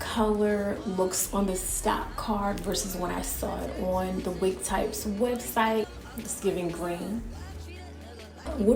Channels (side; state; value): both; identical; correlation 1.00